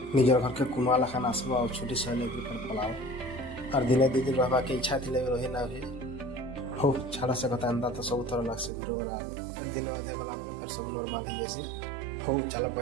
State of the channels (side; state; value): left; drops out; at 8.7 s